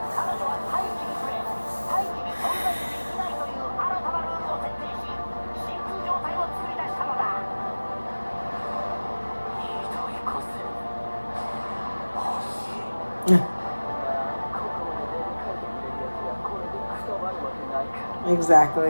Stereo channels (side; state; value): both; inverted; correlation -1.00